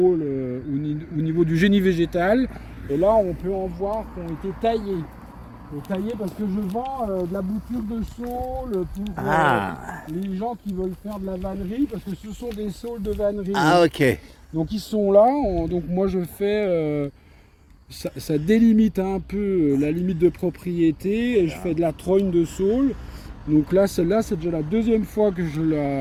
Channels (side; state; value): both; identical; correlation 1.00